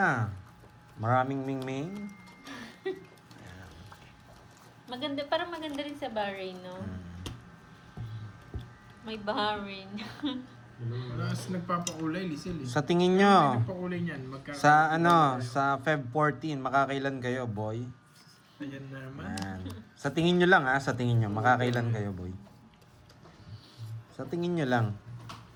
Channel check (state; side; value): identical; both; correlation 1.00